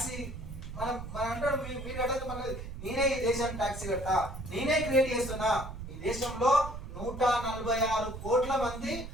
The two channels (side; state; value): right; noise; rumble, 9 dB below the sound